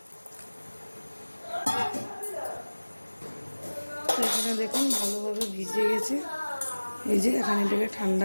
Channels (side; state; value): both; inverted; correlation -1.00